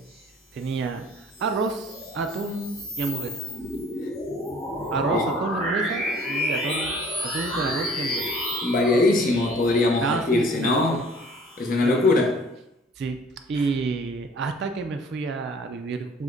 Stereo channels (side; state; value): both; normal; correlation 0.53